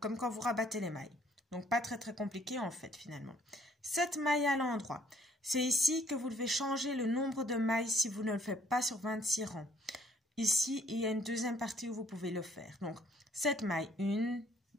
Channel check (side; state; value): both; normal; correlation 0.62